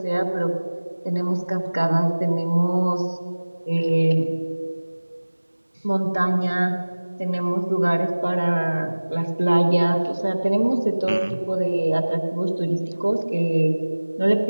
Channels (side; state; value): both; inverted; correlation -1.00